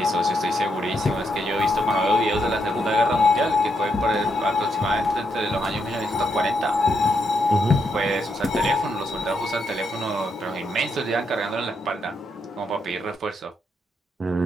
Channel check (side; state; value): both; normal; correlation 0.79